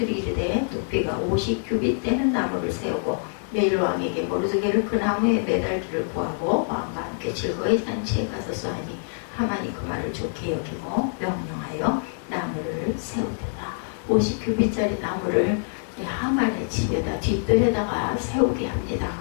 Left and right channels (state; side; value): silent; right; 57 dB below the other